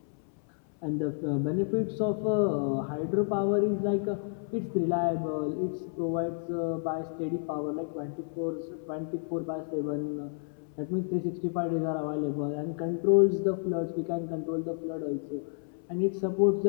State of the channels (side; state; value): right; silent; 58 dB below the other